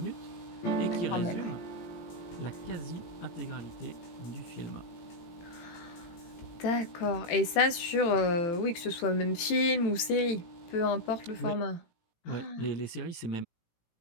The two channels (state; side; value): late; right; 18 ms